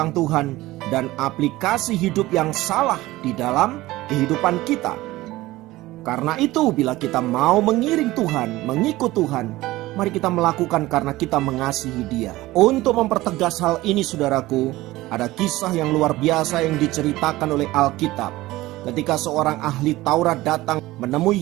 Tuhan dan aplikasi hidup yang salah di dalam kehidupan kita. Karena itu, bila kita mau mengiring Tuhan, mengikut Tuhan, mari kita melakukan karena kita mengasihi Dia. Untuk mempertegas hal ini, saudaraku, ada kisah yang luar biasa yang diceritakan oleh Alkitab. Ketika seorang ahli Taurat datang menemui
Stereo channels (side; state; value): left; quieter; 18.0 dB